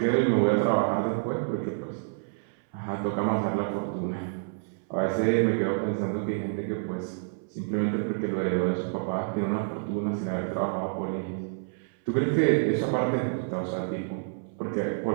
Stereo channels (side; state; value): left; silent; 59 dB below the other